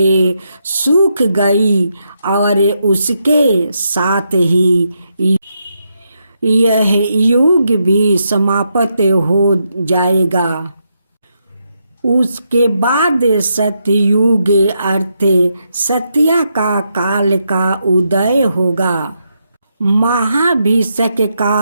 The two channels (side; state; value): both; inverted; correlation -0.81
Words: सूख गई और उसके साथ ही यह युग भी समाप्त हो जाएगा। उसके बाद सतयुग अर्थ सत्या का काल का उदय होगा। महाभिषेक